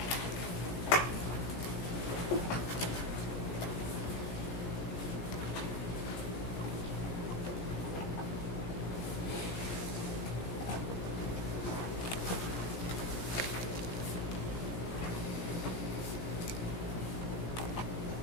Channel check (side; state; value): right; late; 17 ms